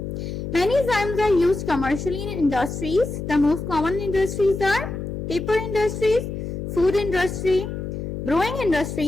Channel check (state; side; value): noise; left; hum, 6 dB below the sound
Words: Many enzymes are used commercially in industries. The most common industries are paper industries, food industry, brewing